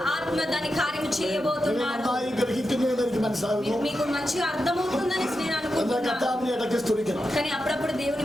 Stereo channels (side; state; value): both; normal; correlation 0.89